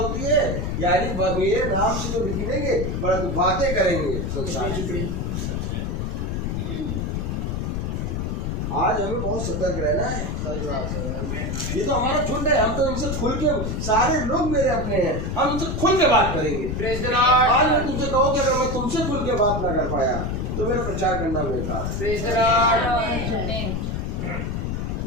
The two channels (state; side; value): noise; left; rumble, 2 dB below the sound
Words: है? यानी मेरे नाम से तो निकलेंगे परंतु बातें करेंगे संसार की। आज हमें बहुत सतर्क रहना है। ये तो हमारा झुंड है, हम तो इनसे खुल के, सारे लोग मेरे अपने हैं, हम इनसे खुल के बात करेंगे। Praise the Lord. आज मैं तुमसे कहूँ कि अगर मैं तुमसे खुल के बात ना कर पाया तो मेरा प्रचार करना बेकार है। Praise the Lord.